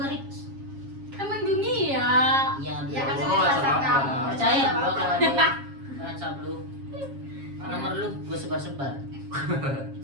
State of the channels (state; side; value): late; left; 7.3 ms